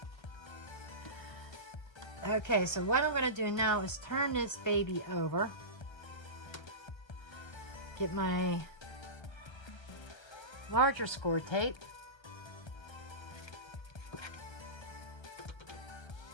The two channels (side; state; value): right; late; 1.3 ms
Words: Okay, so what I'm going to do now is turn this baby over. Get my larger score tape.